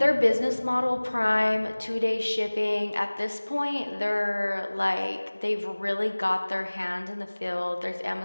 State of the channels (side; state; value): both; inverted; correlation -1.00